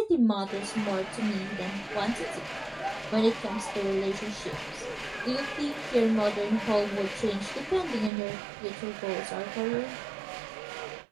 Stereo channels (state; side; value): drops out; left; at 8.1 s